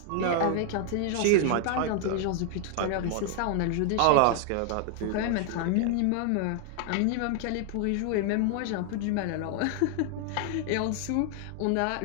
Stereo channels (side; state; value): both; different; correlation 0.00